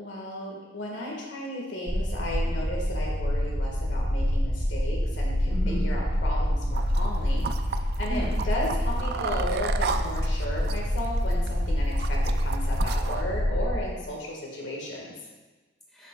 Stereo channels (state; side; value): normal; both; correlation 0.77